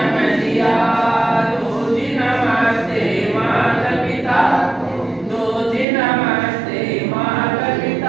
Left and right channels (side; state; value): left; drops out; at 5.9 s